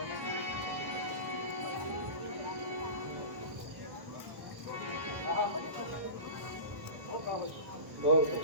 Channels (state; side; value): late; left; 1.5 ms